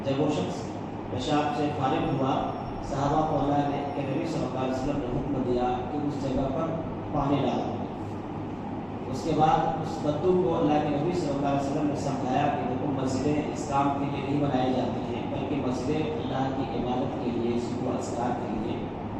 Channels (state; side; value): identical; both; correlation 1.00